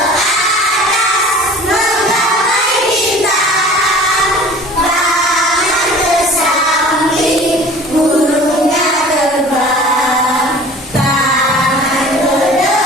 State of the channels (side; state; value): both; normal; correlation 0.44